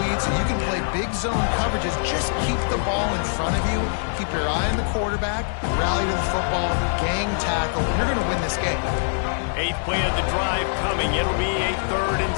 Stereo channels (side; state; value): right; silent; digital silence